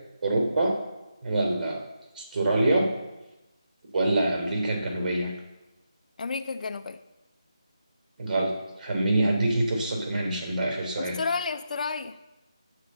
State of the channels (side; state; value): both; inverted; correlation -0.84